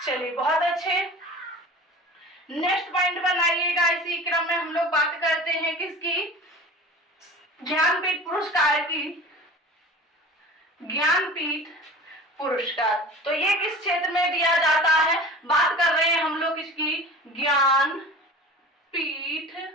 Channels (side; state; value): both; normal; correlation 0.39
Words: बहुत अच्छे। नेक्स्ट पॉइंट बनाइएगा। इसी क्रम में हम लोग बात करते हैं किसकी? ज्ञानपीठ पुरस्कार की। ज्ञानपीठ पुरस्कार तो ये किस क्षेत्र में दिया जाता है? बात कर रहे हैं हम लोग इसकी ज्ञानपीठ